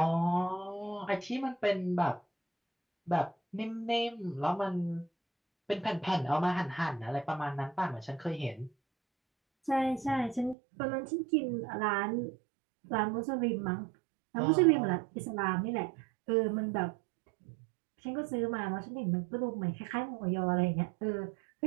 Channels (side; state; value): left; drops out; at 10.6 s